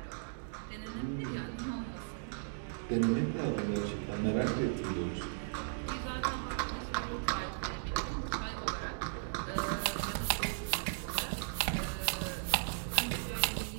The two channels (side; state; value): left; silent; digital silence